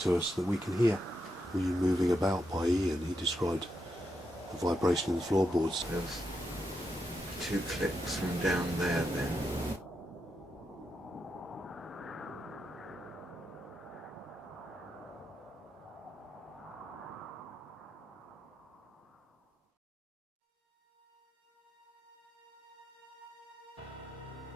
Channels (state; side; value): normal; both; correlation 0.84